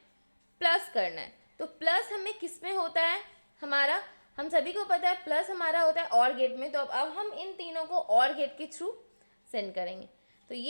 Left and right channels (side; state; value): both; inverted; correlation -1.00